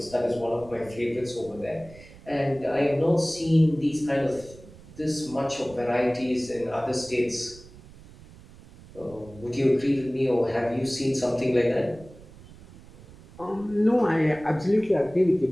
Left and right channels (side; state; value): right; noise; rumble, 20 dB below the sound